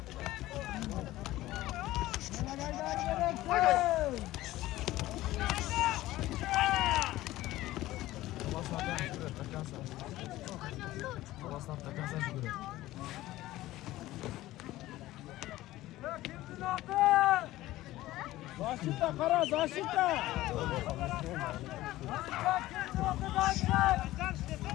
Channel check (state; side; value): quieter; right; 16.3 dB